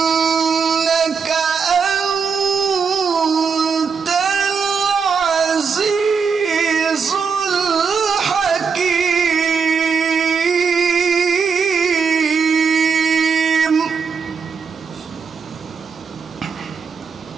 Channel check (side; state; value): left; quieter; 5.8 dB